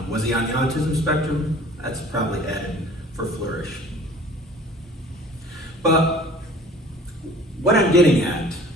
was he on the autism spectrum? That's probably added for flourish. But what I'm getting at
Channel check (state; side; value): normal; both; correlation 0.48